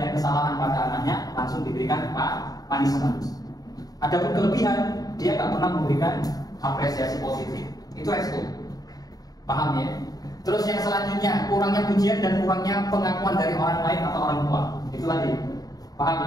kesalahan pada anaknya langsung diberikan punishment. Adapun kelebihan dia tak pernah memberikan apresiasi positif. Itu resiko. Paham ya? Terus yang selanjutnya kurangnya pujian dan kurangnya pengakuan dari orang lain atau orang tua. Itu lagi. Paham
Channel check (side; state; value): right; late; 0.18 ms